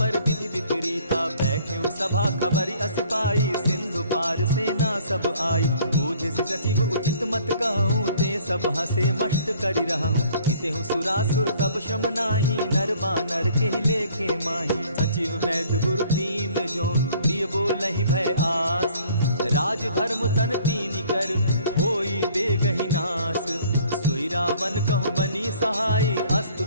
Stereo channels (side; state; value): both; inverted; correlation -0.56